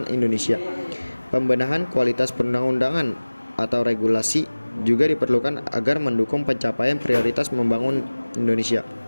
Indonesia. Pembenahan kualitas perundang-undangan atau regulasi juga diperlukan agar mendukung pencapaian prioritas membangun Indonesia.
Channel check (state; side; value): inverted; both; correlation -1.00